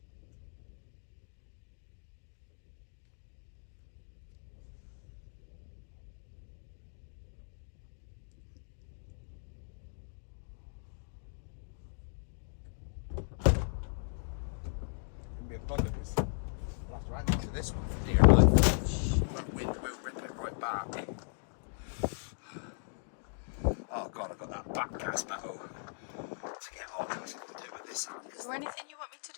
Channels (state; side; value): silent; right; digital silence